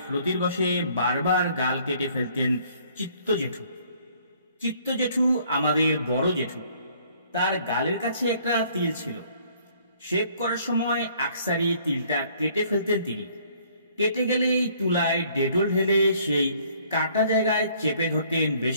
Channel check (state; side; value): inverted; both; correlation -0.61